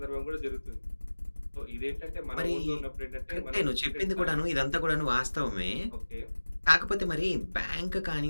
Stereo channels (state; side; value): inverted; both; correlation -1.00